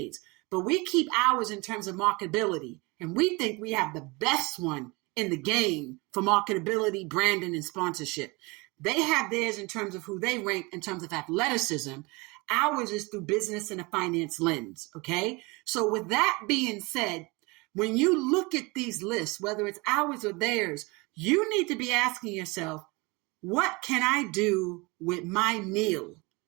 But we keep ours in terms of marketability, and we think we have the best one in the game for marketability, branding, and sponsorship. They have theirs in terms of who they rank in terms of athleticism. Ours is through business and a finance lens, okay? So with that being said, when you look at these lists, whether it's ours or theirs, you need to be asking yourself, what can I do with my NIL,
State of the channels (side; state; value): left; quieter; 26.1 dB